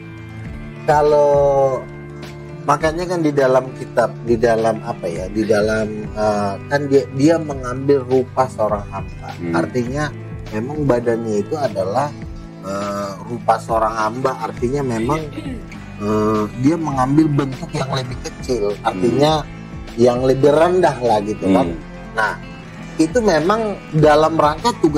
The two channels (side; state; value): both; identical; correlation 1.00